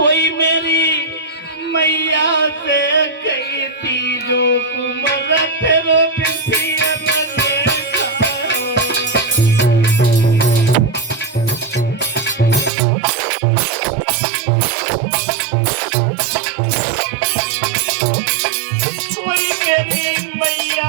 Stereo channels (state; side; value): drops out; left; at 12.7 s